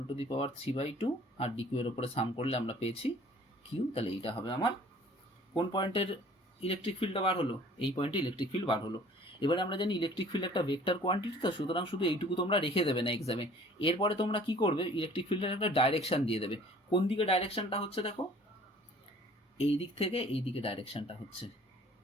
to the power 3/2, আর ডিকিউ এর উপরে সাম করলে আমরা পেয়েছি কিউ। তাহলে এইটা হবে আমার কোন পয়েন্টের ইলেকট্রিক ফিল্ডটা বার হলো? এই পয়েন্টে ইলেকট্রিক ফিল্ড বার হলো। এবারে আমরা জানি ইলেকট্রিক ফিল্ড একটা ভেক্টর কোয়ান্টিটি, তো সুতরাং শুধু এইটুকু তোমরা রেখে দেবে না এক্সামে। এরপরে তোমরা কি করবে? ইলেকট্রিক ফিল্ডের একটা ডাইরেকশন দিয়ে দেবে। কোন দিকে ডাইরেকশনটা হচ্ছে দেখো, এই দিক থেকে এই দিকে ডাইরেকশনটা হচ্ছে।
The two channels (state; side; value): normal; both; correlation 0.51